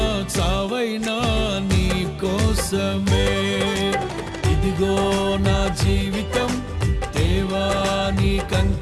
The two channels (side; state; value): both; identical; correlation 1.00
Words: చావైనా నీ కోసమే. ఇదిగో నా జీవితం దేవా